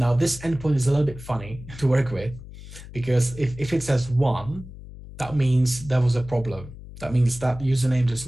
this endpoint is a little bit funny to work with, because if it says 1, that means there was a problem. That means that username does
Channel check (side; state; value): left; noise; hum, 15 dB below the sound